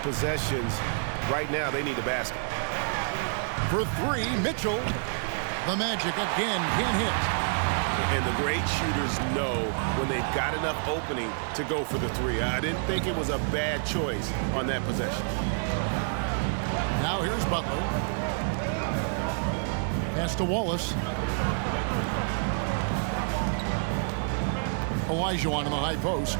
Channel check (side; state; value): left; silent; digital silence